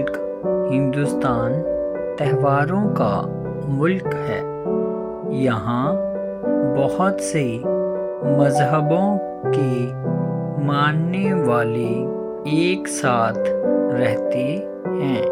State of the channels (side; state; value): both; identical; correlation 1.00